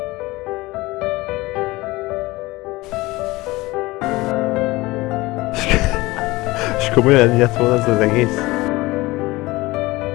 És komolyan ennyi lett volna ez az egész?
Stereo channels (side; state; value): right; quieter; 20.6 dB